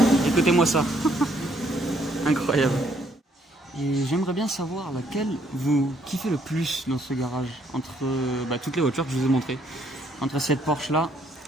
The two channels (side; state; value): both; normal; correlation 0.68